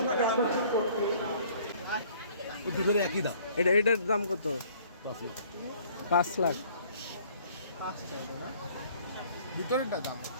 দুটোর একই দাম। এটার দাম কত? 5 লাখ। দুটোর দাম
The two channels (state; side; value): inverted; both; correlation -0.56